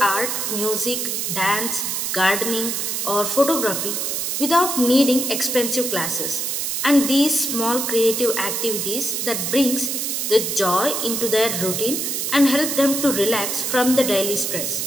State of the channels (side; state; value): right; noise; hiss, 1 dB below the sound